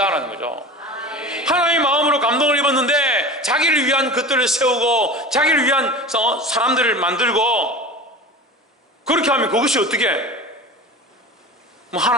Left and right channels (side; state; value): both; normal; correlation 0.33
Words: 거죠. 하나님의 마음으로 감동을 입었는데 자기를 위한 것들을 세우고 자기를 위한 사람들을 만들고 그렇게 하면 그것이 어떻게